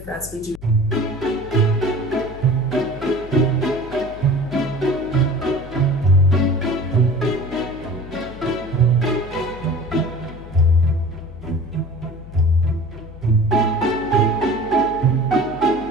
France we do.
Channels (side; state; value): left; noise; hum, 16 dB below the sound